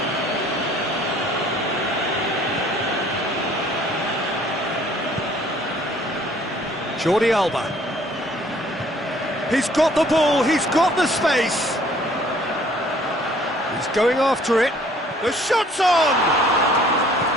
Jordi Alba. He's got the ball, he's got the space. He's going after it. The shot's on!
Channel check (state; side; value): normal; both; correlation 0.57